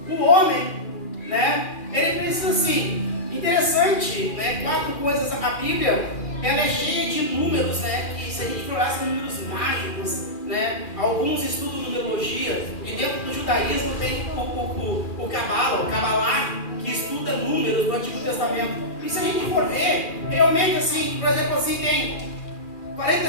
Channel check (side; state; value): right; late; 2.4 ms